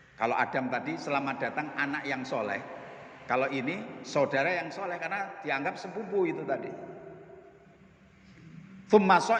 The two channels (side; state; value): both; identical; correlation 1.00